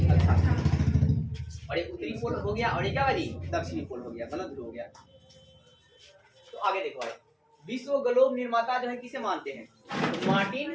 अक्षांश। और ये उत्तरी पोल हो गया और ये क्या जी? दक्षिणी पोल हो गया, मतलब ध्रुव हो गया। तो आगे देखो भाई, विश्व ग्लोब निर्माता जो है किसे मानते हैं? तो मार्टिन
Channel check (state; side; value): identical; both; correlation 1.00